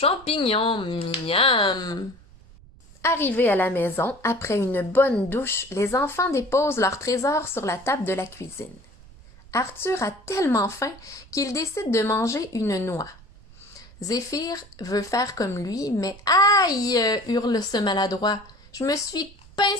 miam !» Arrivés à la maison, après une bonne douche, les enfants déposent leur trésor sur la table de la cuisine. Arthur a tellement faim qu'il décide de manger une noix. Zéphyr veut faire comme lui, mais « Aïe !» hurle ce maladroit. « Je me suis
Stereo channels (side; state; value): right; noise; rumble, 23 dB below the sound